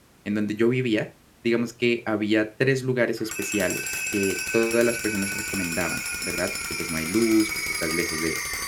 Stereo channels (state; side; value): identical; both; correlation 1.00